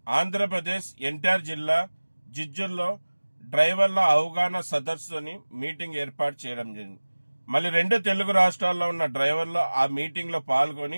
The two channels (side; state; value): both; inverted; correlation -1.00